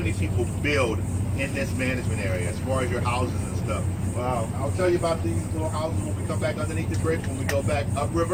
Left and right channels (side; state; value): both; identical; correlation 1.00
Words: people build in this management area as far as your houses and stuff. Wow, I'll tell you about these little houses when we come back underneath the bridge, when we go back